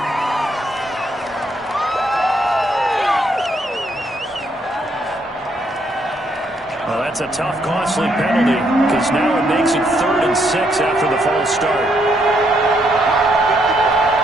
Well, that's a tough, costly penalty because now it makes it 3rd and 6 after the false start.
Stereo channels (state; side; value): normal; both; correlation 0.73